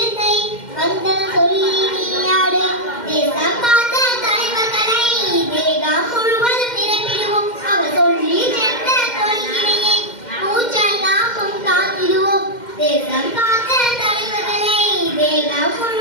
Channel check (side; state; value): right; late; 2.1 ms